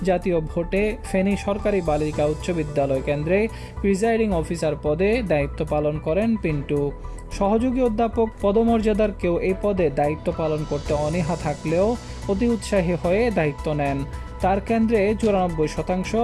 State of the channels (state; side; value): identical; both; correlation 1.00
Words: জাতীয় ভোটে ফেনী সরকারি বালিকা উচ্চ বিদ্যালয় কেন্দ্রে প্রিজাইডিং অফিসার পদে দায়িত্ব পালন করেন পিন্টু। সহযোগী অধ্যাপক পদমর্যাদার কেউ এই পদে দায়িত্ব পালন করতে অনীহা থাকলেও অতি উৎসাহী হয়ে দায়িত্ব নেন। তার কেন্দ্রে 94%